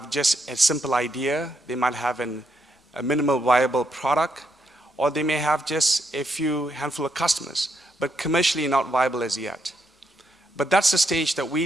just a simple idea. They might have a minimal viable product, or they may have just a few handful of customers, but commercially not viable as yet. But that's the stage that we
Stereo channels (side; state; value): both; normal; correlation 0.79